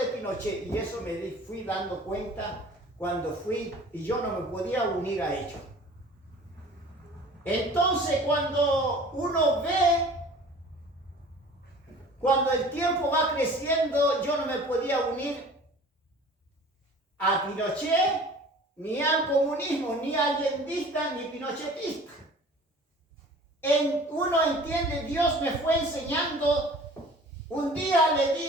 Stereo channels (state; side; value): normal; both; correlation 0.45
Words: Pinochet. Y eso me fui dando cuenta cuando fui y yo no me podía unir a ellos. Entonces, cuando uno ve, cuando el tiempo va creciendo, yo no me podía unir a Pinochet, ni al comunismo, ni allendista, ni pinochetista. Uno entiende, Dios me fue enseñando. Un día le